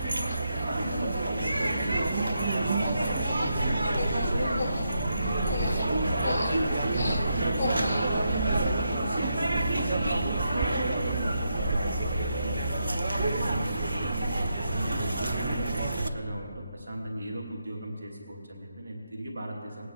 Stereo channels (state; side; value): inverted; both; correlation -0.82